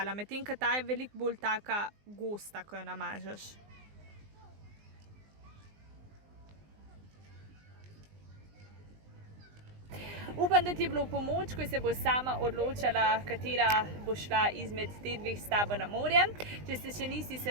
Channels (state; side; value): late; left; 20 ms